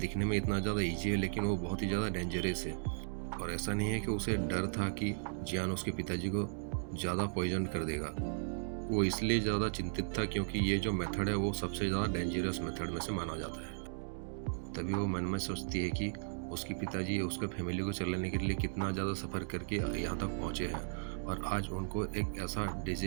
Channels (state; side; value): silent; left; digital silence